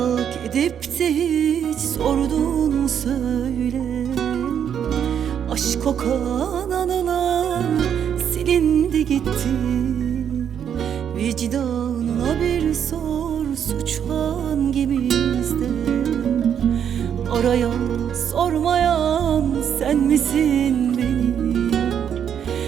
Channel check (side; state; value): left; quieter; 8.6 dB